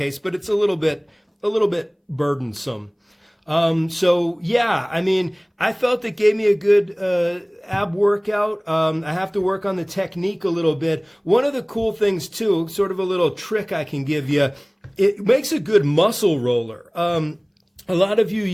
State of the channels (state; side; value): identical; both; correlation 1.00